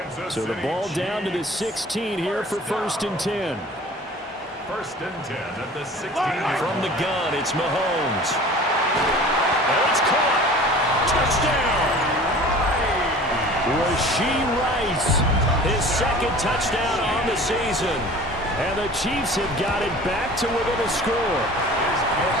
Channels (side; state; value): both; normal; correlation 0.43